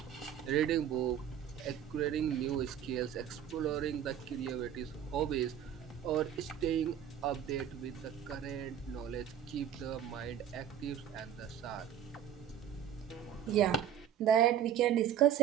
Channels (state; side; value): quieter; left; 9.4 dB